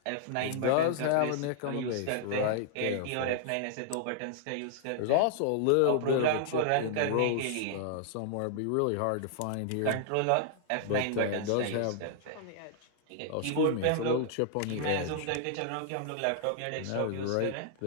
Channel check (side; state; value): both; different; correlation -0.01